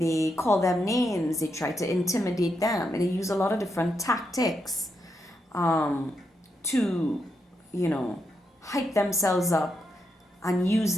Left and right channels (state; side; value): normal; both; correlation 0.83